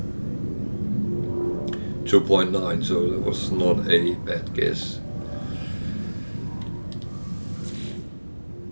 2.9, so that was not a bad guess.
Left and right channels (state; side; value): inverted; both; correlation -1.00